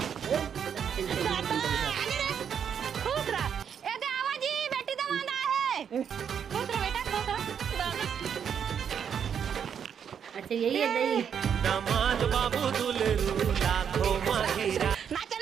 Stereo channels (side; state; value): left; quieter; 7.9 dB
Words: अच्छा यही है दही दामाद बाबू दुलेरू लाखों माहिरा ना